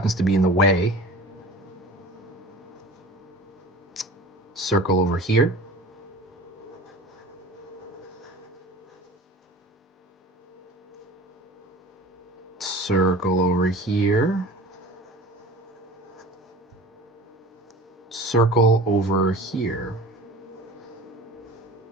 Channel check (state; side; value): normal; both; correlation 0.40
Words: to be in the way. Circle over here. Circle over here. Circle over here.